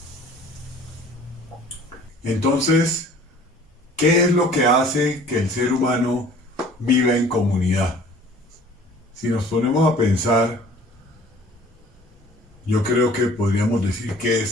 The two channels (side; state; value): both; normal; correlation 0.50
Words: Entonces, ¿qué es lo que hace que el ser humano viva en comunidad? Si nos ponemos a pensar, yo creo que podríamos decir que